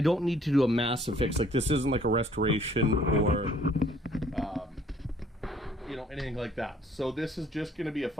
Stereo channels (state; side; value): normal; both; correlation 0.59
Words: need to do a massive fix. Like, this isn't like a restoration or you know, anything like that. So this is just going to be a